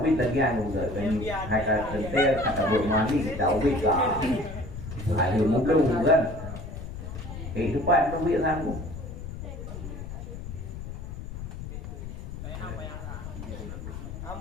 ubi lagi yang juga dan kata tentel kata bermani kita ubi lah ada mungkin kan itu pak itu biar sanggup.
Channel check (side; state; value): left; noise; rumble, 9 dB below the sound